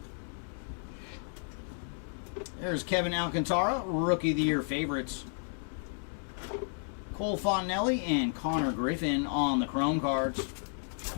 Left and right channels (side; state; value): right; silent; digital silence